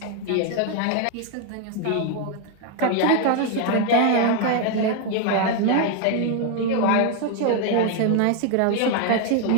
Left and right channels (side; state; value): both; different; correlation 0.01